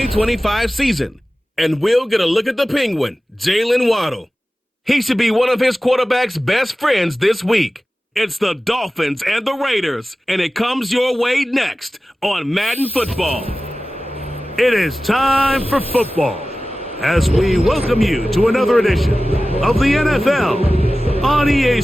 season, and we'll get a look at the Penguin, Jalen Waddle. He should be one of his quarterback's best friends this week. It's the Dolphins and the Raiders, and it comes your way next on Madden Football. It is time for football as we welcome you to another edition of the NFL on EA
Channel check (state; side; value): normal; both; correlation 0.96